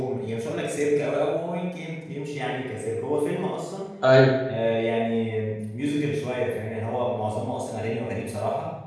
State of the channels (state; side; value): identical; both; correlation 1.00